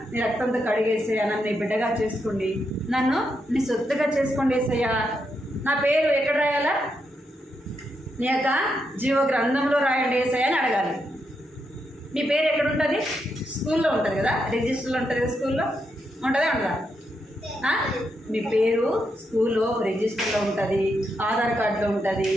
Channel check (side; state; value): both; normal; correlation 0.82